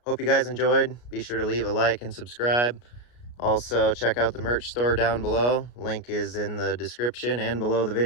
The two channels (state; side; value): late; right; 33 ms